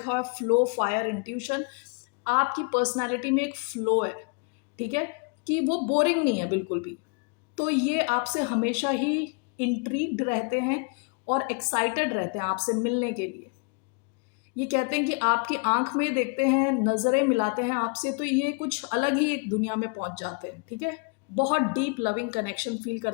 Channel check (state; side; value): quieter; right; 35.0 dB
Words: हुआ है फ्लो, फायर, इंट्यूशन। आपकी पर्सनालिटी में एक फ्लो है, ठीक है, कि वो बोरिंग नहीं है बिल्कुल भी। तो ये आपसे हमेशा ही इंट्रीग्ड रहते हैं और एक्साइटेड रहते हैं आपसे मिलने के लिए। ये कहते हैं कि आपकी आंख में देखते हैं, नज़रें मिलाते हैं आपसे, तो ये कुछ अलग ही एक दुनिया में पहुंच जाते हैं, ठीक है। बहुत डीप लविंग कनेक्शन फील